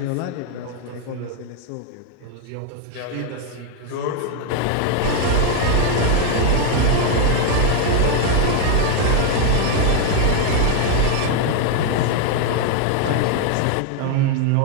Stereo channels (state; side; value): different; both; correlation 0.00